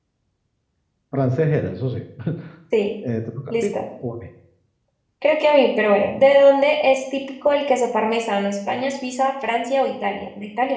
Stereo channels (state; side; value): identical; both; correlation 1.00